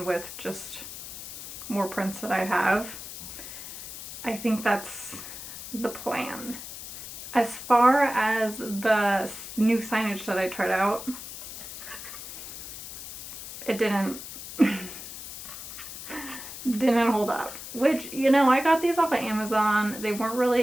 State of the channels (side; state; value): left; noise; hiss, 11 dB below the sound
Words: with just more prints that I have. I think that's the plan. As far as the new signage that I tried out, it didn't hold up. Which, you know, I got these off of Amazon. They weren't really